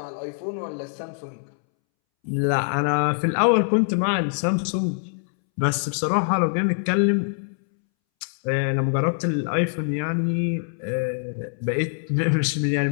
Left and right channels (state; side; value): silent; right; 63 dB below the other